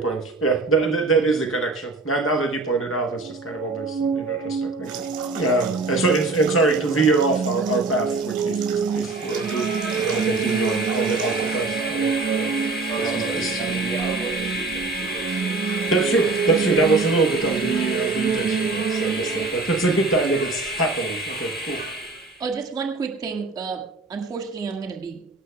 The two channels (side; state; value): left; quieter; 3.5 dB